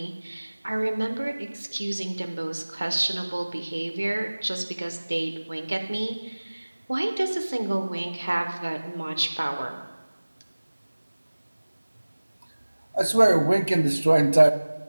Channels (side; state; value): both; inverted; correlation -1.00